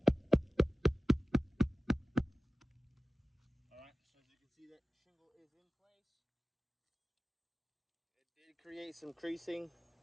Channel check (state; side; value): normal; both; correlation 0.96